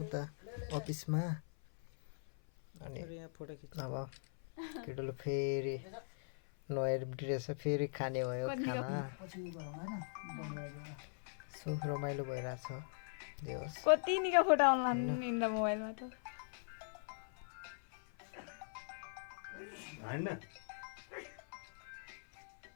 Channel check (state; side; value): silent; right; 50 dB below the other